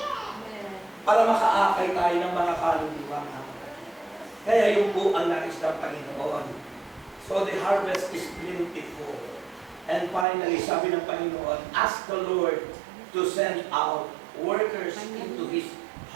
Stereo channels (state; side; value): drops out; left; at 10.2 s